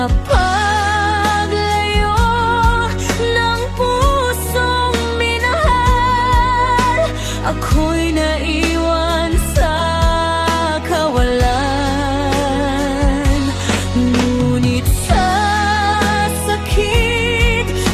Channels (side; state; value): both; identical; correlation 1.00